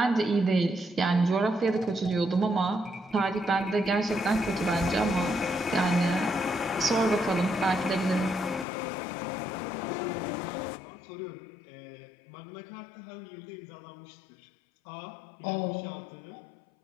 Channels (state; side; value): drops out; right; at 8.7 s